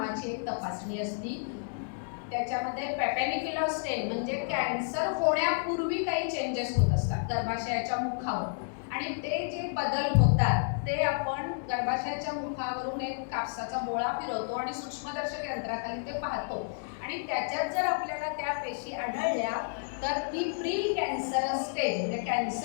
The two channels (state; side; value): silent; right; digital silence